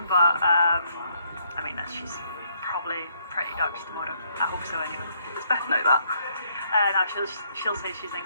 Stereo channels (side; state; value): both; inverted; correlation -0.70